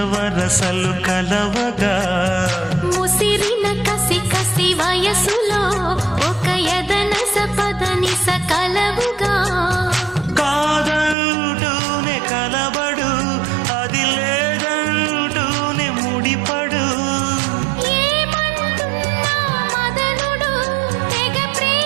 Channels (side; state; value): left; drops out; at 11.2 s